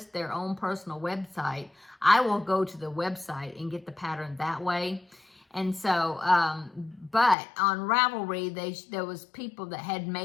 their own personal website, I will go to the website and get the pattern that way. And so, but on Ravelry, there was people that had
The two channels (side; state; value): right; drops out; at 7.4 s